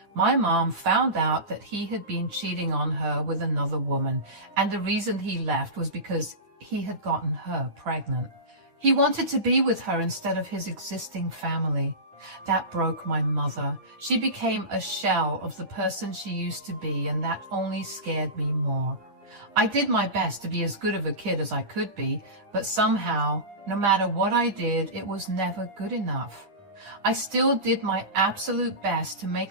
my mom found out that he had been cheating on her with another woman, and the reason he left was because he had gotten her pregnant. He wanted to be with her instead of his existing family. That broke my mother. She became a shell of the person she used to be, and that only scared me more. I did my best to be as good of a kid as I could be, but somehow, no matter what I did, it was never good enough. I still did my absolute best to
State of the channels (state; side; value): late; left; 9.8 ms